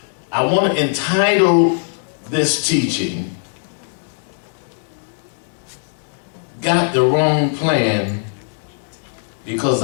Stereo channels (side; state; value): right; silent; digital silence